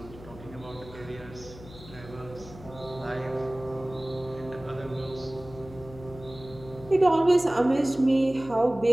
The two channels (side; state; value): left; noise; hum, 17 dB below the sound